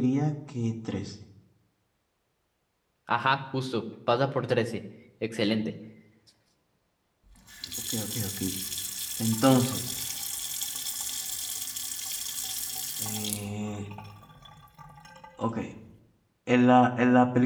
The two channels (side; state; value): both; identical; correlation 1.00